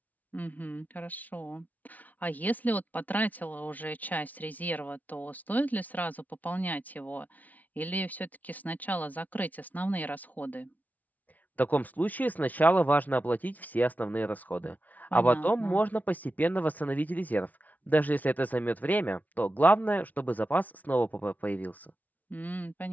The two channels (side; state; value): right; late; 0.076 ms